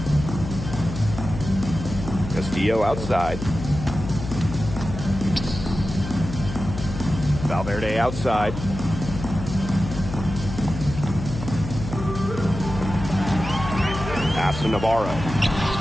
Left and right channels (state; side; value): noise; left; hum, 8 dB below the sound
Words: Castillo outside. Valverde outside. Pass to Navarro.